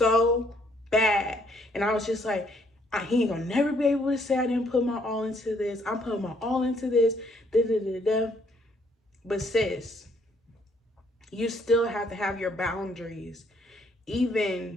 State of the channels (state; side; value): normal; both; correlation 0.67